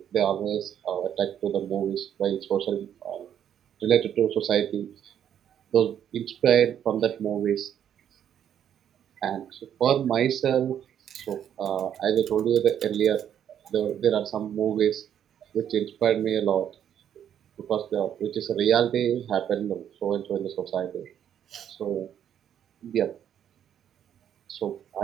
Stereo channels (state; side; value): quieter; left; 9.5 dB